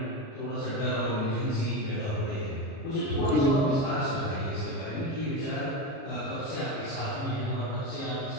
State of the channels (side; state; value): right; late; 37 ms